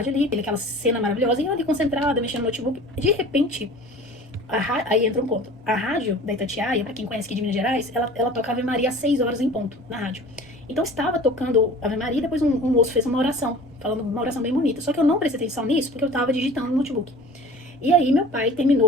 ali, aquela cena maravilhosa, e eu ali concentrada, mexendo no notebook. De repente, aí entra um ponto. A rádio da Itatiaia, pra quem conhece aqui de Minas Gerais, ela toca Ave Maria às 6 horas em ponto, na rádio. Então estava tocando Ave Maria e depois um moço fez uma oração, falando uma oração bem bonita. Só que eu não prestei atenção nisso porque eu tava digitando no notebook. E aí meu pai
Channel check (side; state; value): both; normal; correlation 0.43